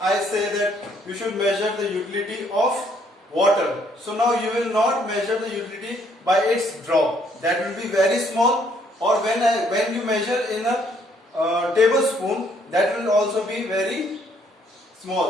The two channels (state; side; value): normal; both; correlation 0.67